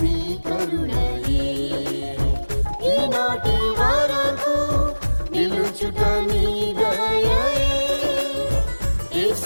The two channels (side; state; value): both; inverted; correlation -1.00